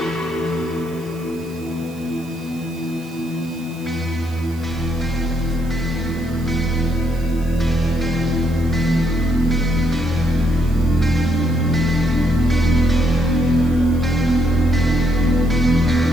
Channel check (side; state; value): right; noise; hiss, 23 dB below the sound